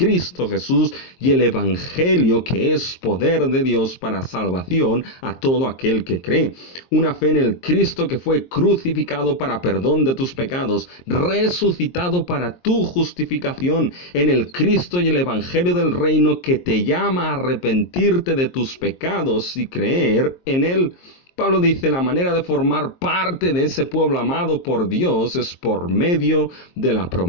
Jesús y el Evangelio, que es poder de Dios para salvación a todo aquel que cree. Una fe en el Cristo que fue crucificado para perdón de tus pecados, resucitado para tu justificación, en el Cristo y el Evangelio del reino que te llama a arrepentirte de tus pecados y creer en él. Pablo dice, la manera de formar parte de ese pueblo amado por Dios es por medio de la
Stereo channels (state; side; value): late; right; 22 ms